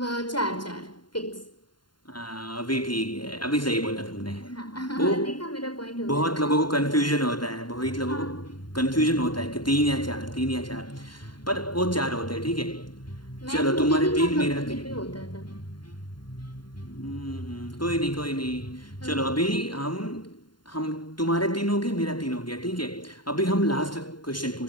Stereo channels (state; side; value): late; right; 0.71 ms